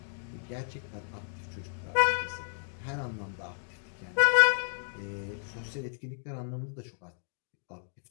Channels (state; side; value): silent; right; digital silence